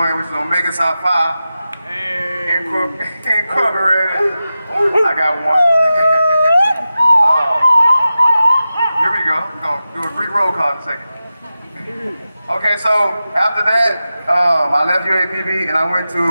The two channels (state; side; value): inverted; both; correlation -0.93